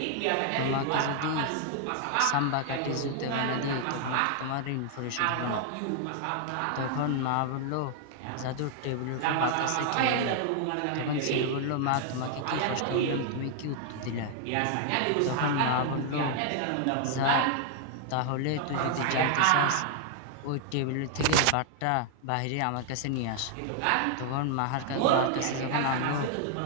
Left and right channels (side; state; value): both; different; correlation 0.00